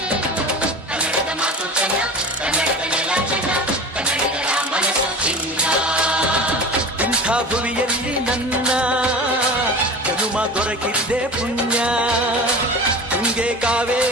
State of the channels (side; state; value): both; normal; correlation 0.34